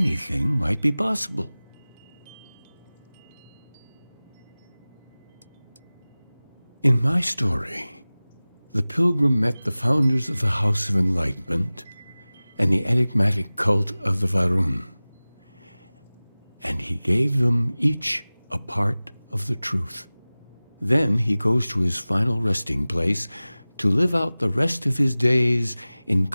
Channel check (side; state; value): both; inverted; correlation -0.99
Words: might be possible. In my story, the pilgrim met the founders of the House of Enlightenment and the enigmatic cult of the Varun, and he gave them each a part of the truth. Then he goes to his final resting place to live out the rest of his days in